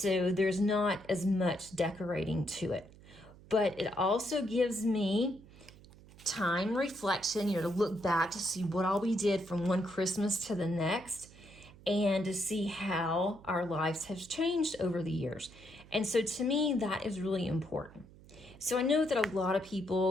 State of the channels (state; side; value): noise; right; hum, 22 dB below the sound